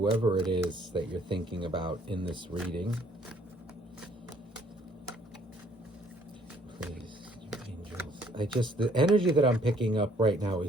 it is that you're thinking about in this reading. Please, angels. The energy that I'm picking up right now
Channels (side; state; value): both; normal; correlation 0.62